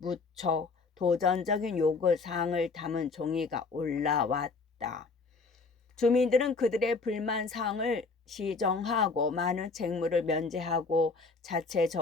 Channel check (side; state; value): right; quieter; 4.1 dB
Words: 도전적인 요구사항을 담은 종이가 올라왔다. 주민들은 그들의 불만 사항을 시정하고 많은 책무를 면제하고